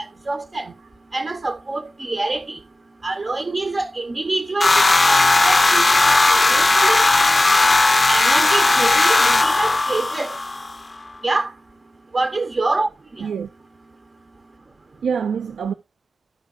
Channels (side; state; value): both; normal; correlation 0.97